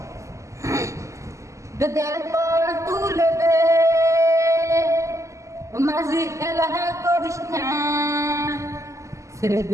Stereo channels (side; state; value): left; late; 0.15 ms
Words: দরবার তুলে দে মাঝি খেলা করিস না ছেড়ে